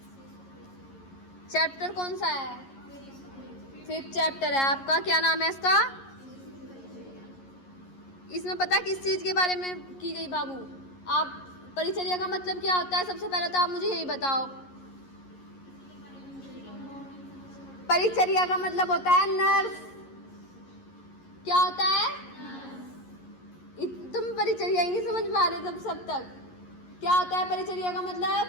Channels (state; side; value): late; right; 11 ms